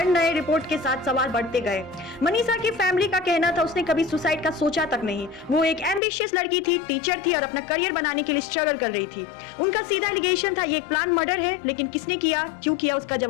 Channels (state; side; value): drops out; right; at 6.0 s